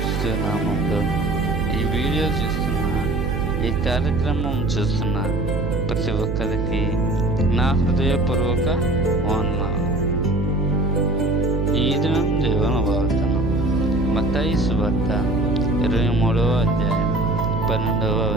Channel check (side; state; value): right; noise; hum, 2 dB below the sound